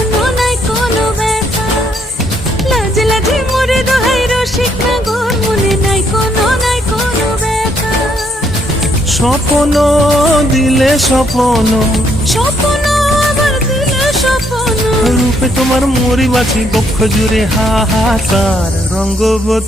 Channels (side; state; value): both; normal; correlation 0.71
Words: কোনো ব্যথা। লাজে লাজে মোরে দোহাই রসিক নাগর মনে নাই কোনো ব্যথা। স্বপ্ন দিলে স্বপ্ন, স্বপ্ন আবার দিলে স্বপ্ন, রূপে তোমার মরি বাছি বক্ষ জুড়ে হাহাকার।